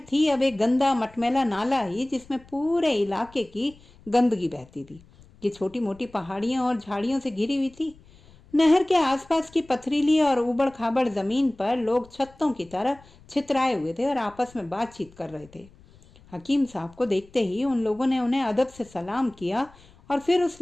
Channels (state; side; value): noise; left; rumble, 25 dB below the sound